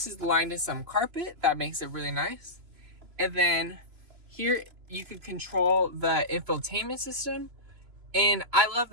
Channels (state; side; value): late; left; 3.0 ms